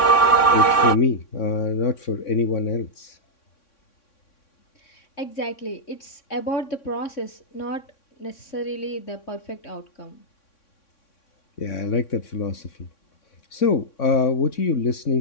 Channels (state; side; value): late; right; 3.6 ms